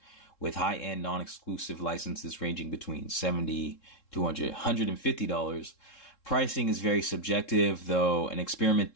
with high-end non-exclusive licenses ranging between $70 to $150. Pricing is very subjective, though an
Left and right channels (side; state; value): right; late; 3.7 ms